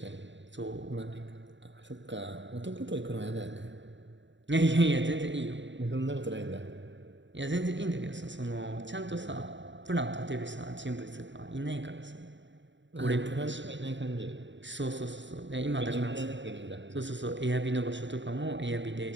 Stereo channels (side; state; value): left; late; 0.54 ms